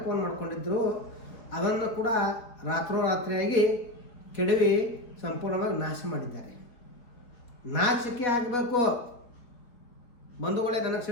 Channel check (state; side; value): late; right; 4.0 ms